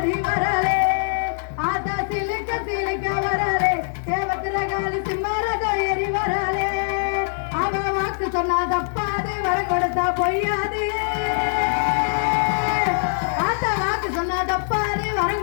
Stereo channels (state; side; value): silent; right; 64 dB below the other